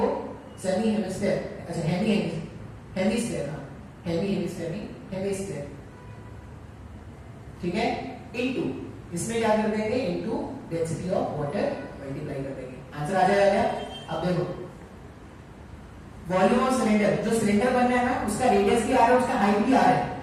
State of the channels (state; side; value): identical; both; correlation 1.00